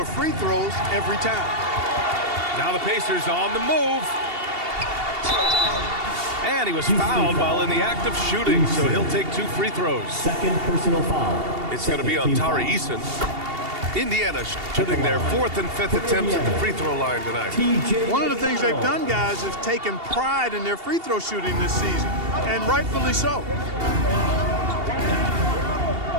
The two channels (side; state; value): left; late; 2.8 ms